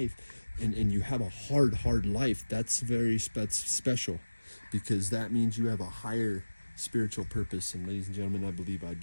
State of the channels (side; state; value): both; inverted; correlation -1.00